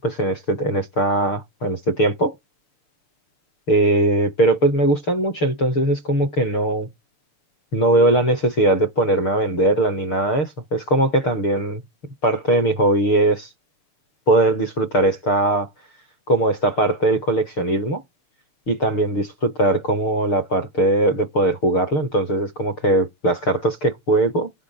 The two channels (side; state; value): right; late; 6.6 ms